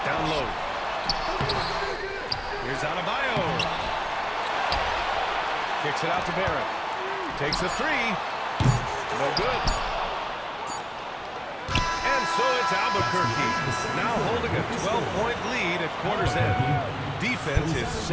Down low. Here's Adebayo. Kicks it out to Barrett. Takes a three. No good. And so it's Albuquerque. Now holding a 12-point lead at quarter's end. Defense is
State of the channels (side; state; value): both; identical; correlation 1.00